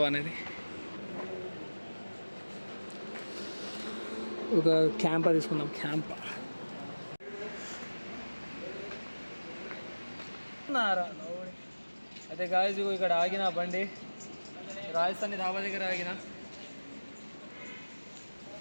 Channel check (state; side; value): inverted; both; correlation -1.00